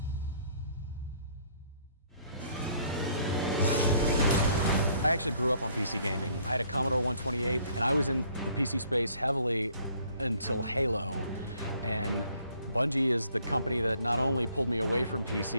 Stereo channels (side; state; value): both; inverted; correlation -0.62